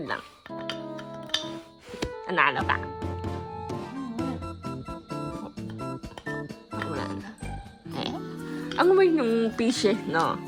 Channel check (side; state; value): both; identical; correlation 1.00